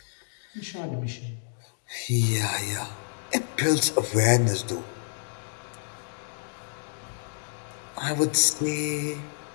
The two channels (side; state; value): right; silent; digital silence